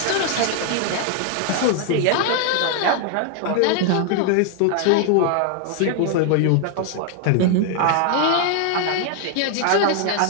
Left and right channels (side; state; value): both; different; correlation 0.00